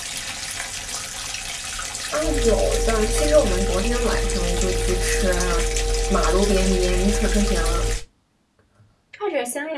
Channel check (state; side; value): identical; both; correlation 1.00